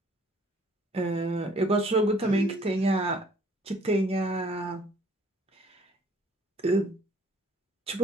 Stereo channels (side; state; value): both; normal; correlation 0.58